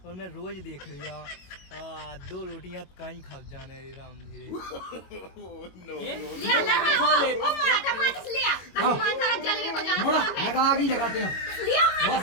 और मैं रोज देख रहा दो रोटियां कहीं खा जाने रे राम धीरे। ले लगा ओ मोड़ा टमाटर से लिया हनुमान सारा जलवे को जाना मोड़ा लगा आगे लगाते हैं लिया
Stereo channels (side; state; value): right; late; 22 ms